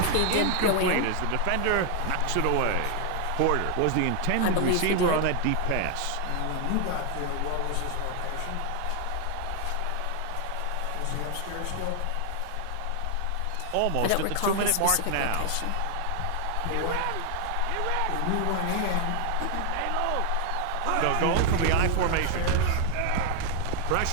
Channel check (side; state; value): both; different; correlation 0.00